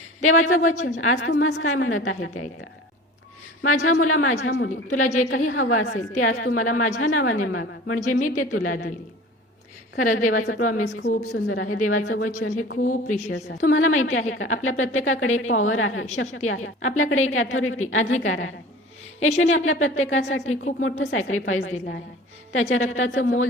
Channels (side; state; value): both; normal; correlation 0.41